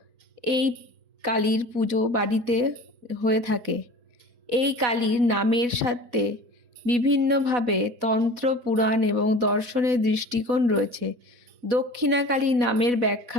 এই কালীর পুজো বাড়িতে হয়ে থাকে। এই কালীর নামের সাথে বিভিন্নভাবে তন্ত্র, পুরাণ এবং দর্শনের দৃষ্টিকোণ রয়েছে। দক্ষিণা কালী নামের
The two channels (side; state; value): left; late; 4.1 ms